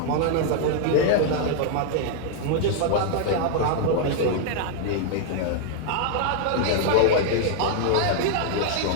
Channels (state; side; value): different; both; correlation 0.00